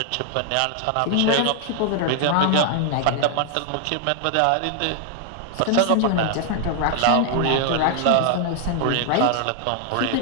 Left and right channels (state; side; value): different; both; correlation 0.00